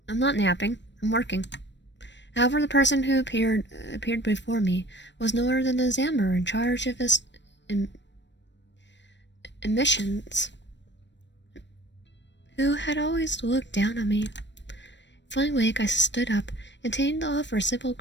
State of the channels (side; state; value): right; late; 0.52 ms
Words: I'm not napping. I'm working. However, the person who appeared before me was no other than the examiner in charge of his emissions, who had always looked down on me. Feeling weak, I stood up, intending to offer a simple